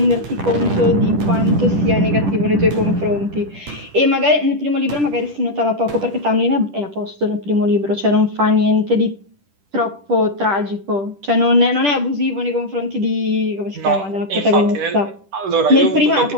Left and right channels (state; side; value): late; left; 10 ms